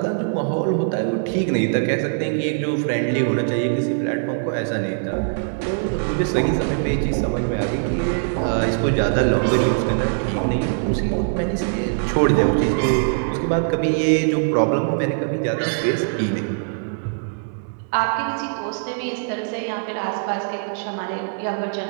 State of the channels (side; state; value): left; silent; 64 dB below the other